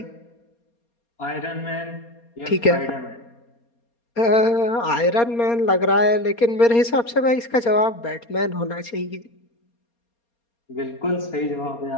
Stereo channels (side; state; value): right; late; 4.3 ms